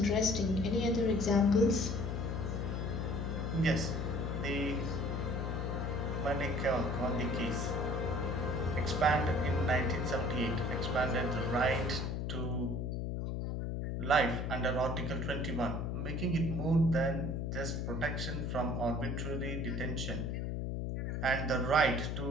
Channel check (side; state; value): left; noise; hum, 1 dB below the sound